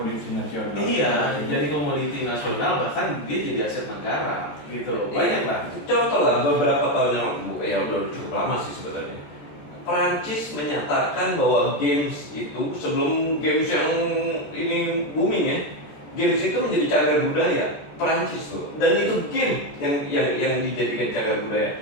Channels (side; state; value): right; late; 14 ms